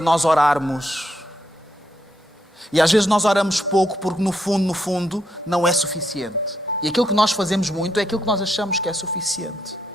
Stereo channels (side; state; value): both; normal; correlation 0.78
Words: orarmos. E às vezes nós oramos pouco porque no fundo, não é suficiente. E aquilo que nós fazemos muito é aquilo que nós achamos que é suficiente.